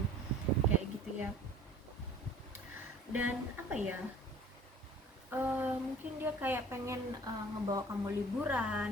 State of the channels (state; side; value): normal; both; correlation 0.48